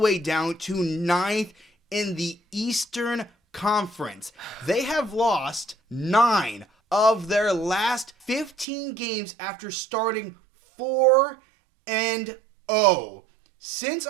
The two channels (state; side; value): drops out; left; at 8.7 s